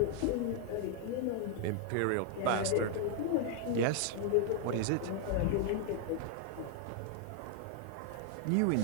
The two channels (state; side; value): different; both; correlation 0.00